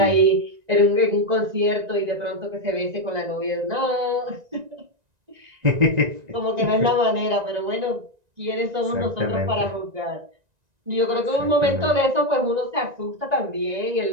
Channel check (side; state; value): left; late; 1.9 ms